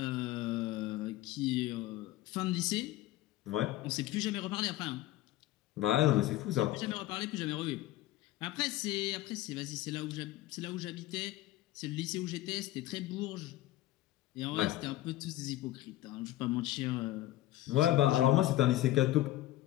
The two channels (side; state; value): right; quieter; 15.5 dB